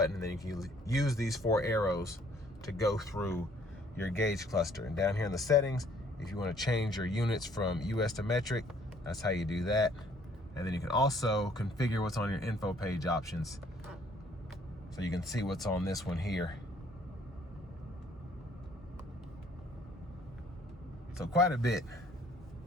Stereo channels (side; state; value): both; normal; correlation 0.61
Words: and then you can use these 4 arrows to go through your gauge cluster. And down here in the settings, if you want to change your units from US to metric, that's how you do that. And then you can also configure what's on your info page options. So you can see what's on this one here. So quite a bit.